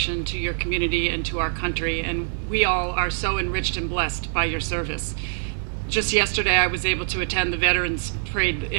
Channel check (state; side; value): silent; left; digital silence